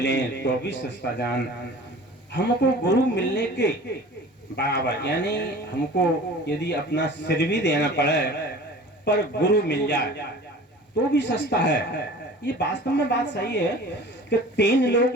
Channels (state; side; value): normal; both; correlation 0.42